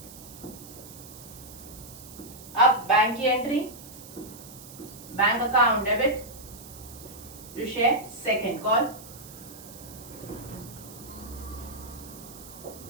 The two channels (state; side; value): noise; right; hiss, 16 dB below the sound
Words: अब बैंक की entry bank account debit to share second call